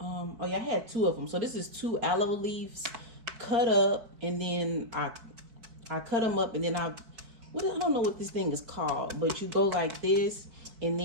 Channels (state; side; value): late; left; 4.6 ms